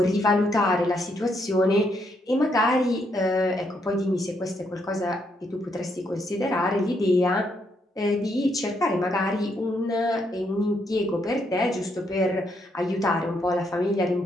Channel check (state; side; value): normal; both; correlation 0.76